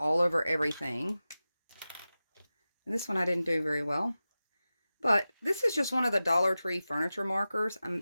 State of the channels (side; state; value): both; inverted; correlation -0.95